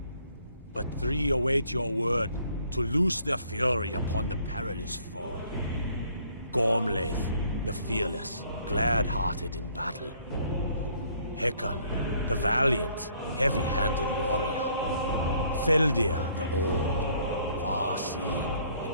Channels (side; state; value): both; inverted; correlation -0.63